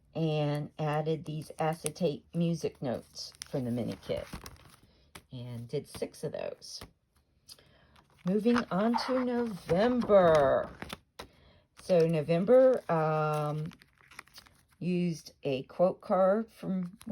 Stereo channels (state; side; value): identical; both; correlation 1.00